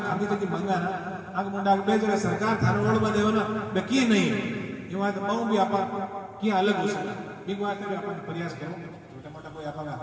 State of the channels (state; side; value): identical; both; correlation 1.00